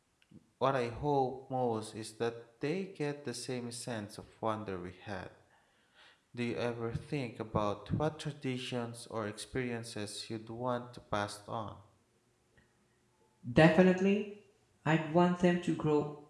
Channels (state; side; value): identical; both; correlation 1.00